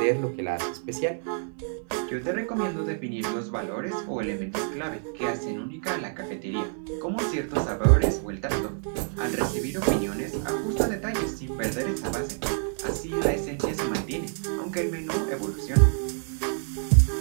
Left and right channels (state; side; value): silent; left; 60 dB below the other